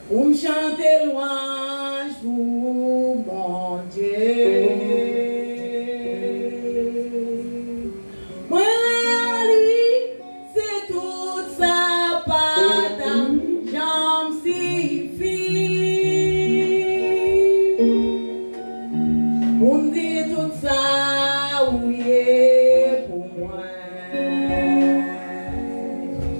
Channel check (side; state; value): both; inverted; correlation -1.00